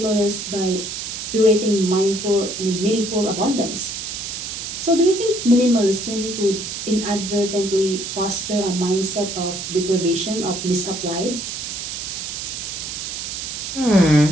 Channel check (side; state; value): right; noise; hiss, 6 dB below the sound